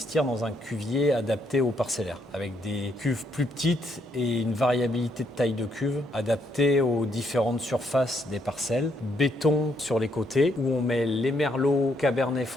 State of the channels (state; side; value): normal; both; correlation 0.74